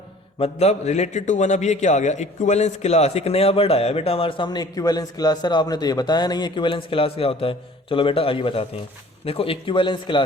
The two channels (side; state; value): both; normal; correlation 0.50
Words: मतलब रिलेटेड टू 1। अब ये क्या आ गया, इक्विवेलेंस क्लास, एक नया वर्ड आया बेटा हमारे सामने, इक्विवेलेंस क्लास। सर आपने तो ये बताया नहीं इक्विवेलेंस क्लास क्या होता है। चलो बेटा आइए बताते हैं। देखो इक्विवेलेंस